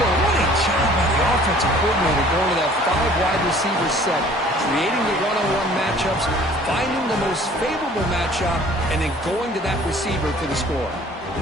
what a job by the offensive coordinator going to that 5-wide receiver set, creating the one-on-one matchups, finding the most favorable matchup, and then going to that receiver for the score.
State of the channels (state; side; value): normal; both; correlation 0.52